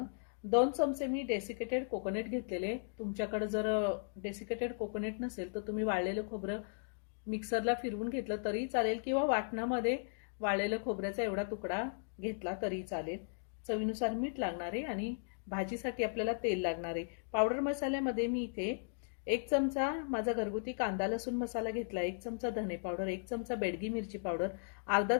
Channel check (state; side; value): silent; right; digital silence